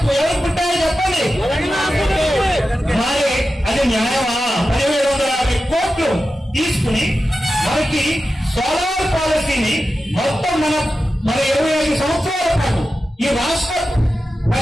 ముట్టాయో చెప్పండి. మరి అది న్యాయమా? 1750 కోట్లు తీసుకుని మనకి సోలార్ పాలసీని మొత్తం మన 25 సంవత్సరాల పాటు ఈ రాష్ట్ర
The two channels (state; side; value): normal; both; correlation 0.92